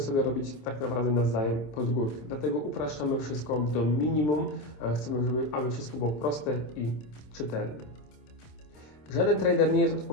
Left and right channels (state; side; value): late; right; 27 ms